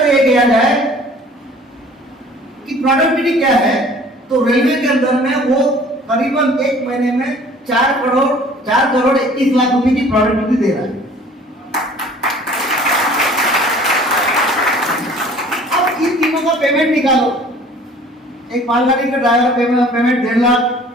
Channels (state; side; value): normal; both; correlation 0.50